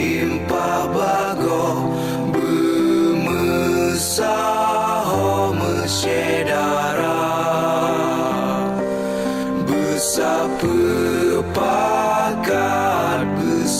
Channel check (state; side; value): identical; both; correlation 1.00